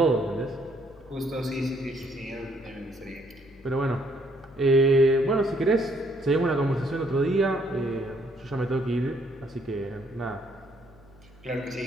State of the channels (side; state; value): left; noise; hum, 24 dB below the sound